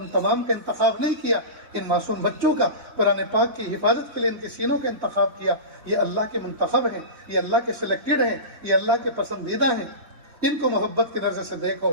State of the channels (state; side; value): late; left; 4.1 ms